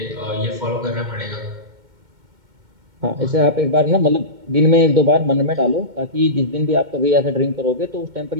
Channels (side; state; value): left; late; 2.2 ms